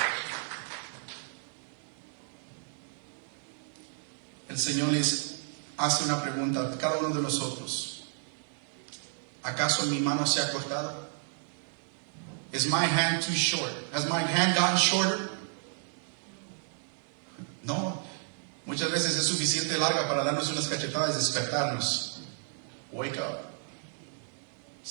El Señor les hace una pregunta a cada uno de nosotros. ¿Acaso mi mano se ha cortado? Is my hand too short? Has my hand gotten shorter? No. Muchas veces es suficiente larga para darnos unas cachetadas y despertarnos. Wake up.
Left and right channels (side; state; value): left; silent; 57 dB below the other